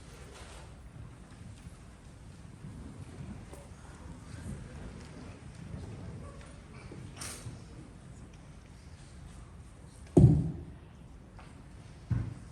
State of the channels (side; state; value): both; identical; correlation 1.00